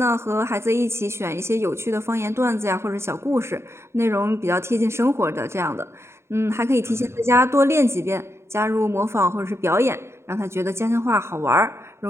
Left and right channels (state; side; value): late; left; 0.13 ms